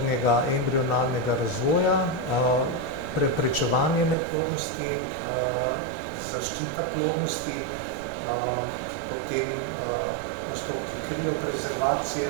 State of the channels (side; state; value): left; drops out; at 4.2 s